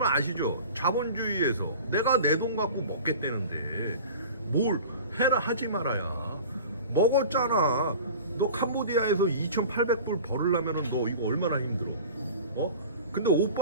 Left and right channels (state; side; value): inverted; both; correlation -0.39